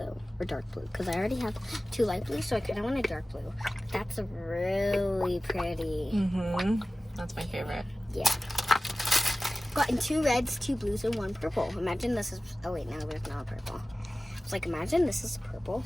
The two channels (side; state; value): both; normal; correlation 0.96